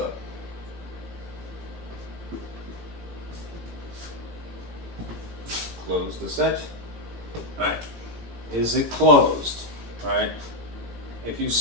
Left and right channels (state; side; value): late; left; 17 ms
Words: Close the set. All right, is it closed? All right, if you